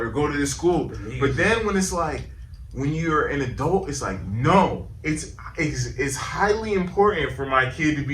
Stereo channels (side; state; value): both; identical; correlation 1.00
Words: go to this school. But then when it's like, when you're an adult, it's like, no, it's highly important for my kid to